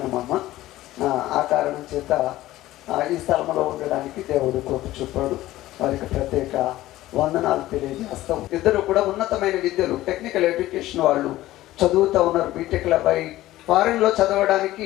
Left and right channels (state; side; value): quieter; right; 15.8 dB